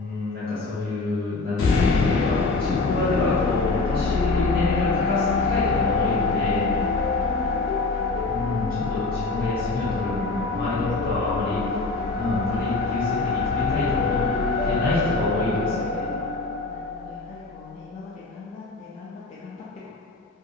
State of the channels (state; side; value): quieter; right; 3.5 dB